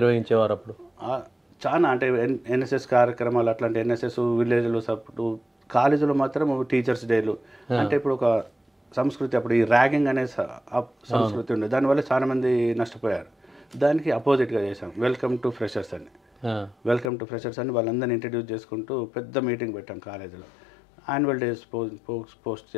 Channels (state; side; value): drops out; right; at 17.1 s